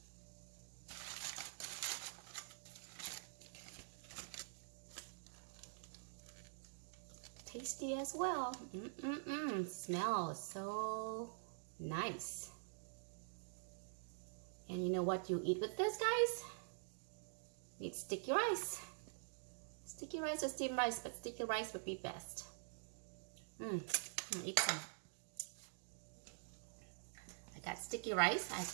Tasty as well. Smells so nice. And you know what you eat with this, guys? You need sticky rice. Sticky rice or steamed rice, but sticky rice would be best. I'll eat some. I got sticky rice. I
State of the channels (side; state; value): left; silent; digital silence